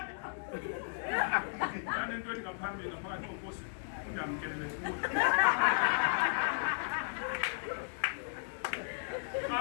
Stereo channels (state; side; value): silent; right; digital silence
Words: nento ethi ngaphambili ngaphakathi kokosi undamkelele kuwe